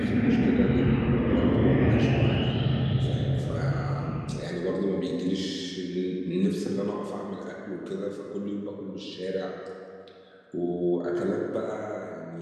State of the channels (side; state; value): both; identical; correlation 1.00